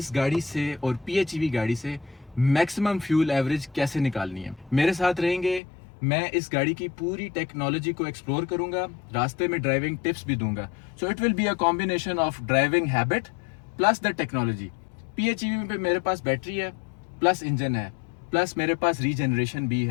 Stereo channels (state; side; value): drops out; right; at 5.6 s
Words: गाड़ी से और PHEV गाड़ी से मैक्सिमम फ्यूल एवरेज कैसे निकालनी है। मेरे साथ रहेंगे, मैं इस गाड़ी की पूरी टेक्नोलॉजी को एक्सप्लोर करूंगा, रास्ते में ड्राइविंग टिप्स भी दूंगा। So it will be a combination of driving habit plus the technology. PHEV पे मेरे पास बैटरी है, प्लस इंजन है, प्लस मेरे पास रीजनरेशन भी